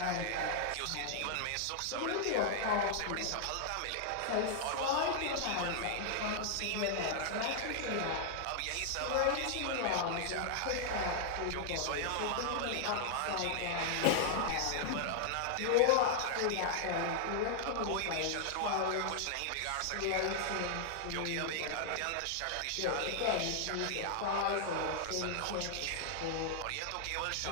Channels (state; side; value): different; both; correlation 0.00